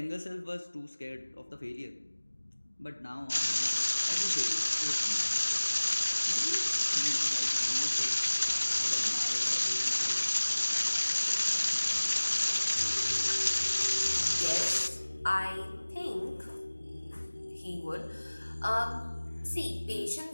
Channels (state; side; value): inverted; both; correlation -1.00